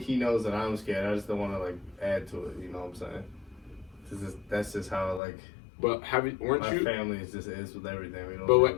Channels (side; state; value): right; drops out; at 5.2 s